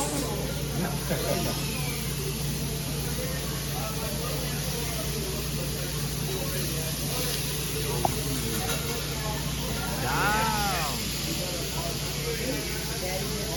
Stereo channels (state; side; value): identical; both; correlation 1.00